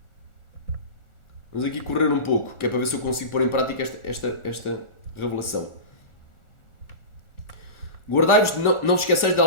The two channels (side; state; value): right; late; 1.4 ms